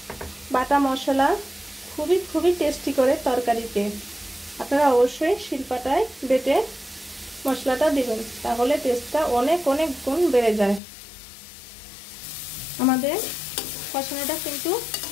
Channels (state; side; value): drops out; right; at 10.8 s